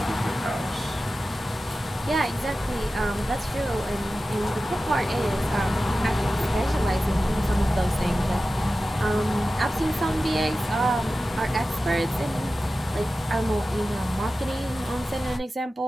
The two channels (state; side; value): normal; both; correlation 0.94